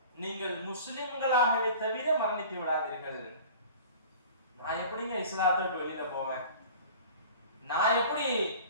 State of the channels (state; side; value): inverted; both; correlation -0.42